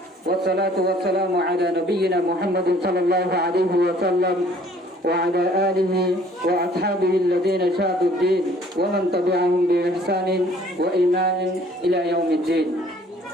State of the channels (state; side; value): normal; both; correlation 0.57